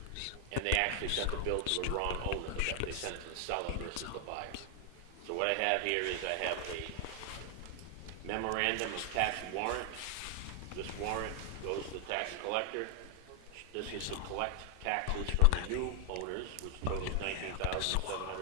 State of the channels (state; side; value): different; both; correlation 0.00